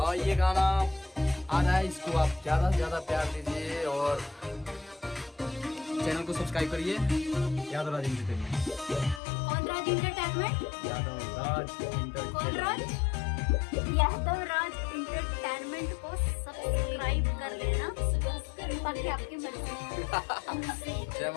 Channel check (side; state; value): right; drops out; at 9.2 s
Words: ये गाना आ रहा है, इसको आप ज्यादा से ज्यादा प्यार दीजिए और चैनल को सब्सक्राइब करिए। यादव राज एंटरटेनमेंट। कौन राज एंटरटेनमेंट? यादव राज कौन राज? यादव राज एंटरटेनमेंट को सब्सक्राइब कर लेना, बाकी आपकी मर्जी। जय